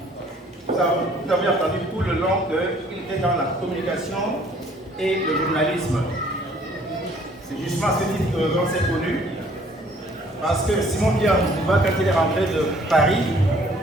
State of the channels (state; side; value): normal; both; correlation 0.58